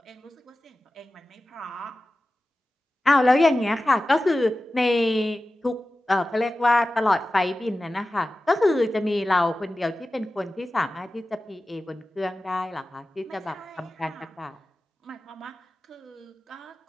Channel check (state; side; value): normal; both; correlation 0.95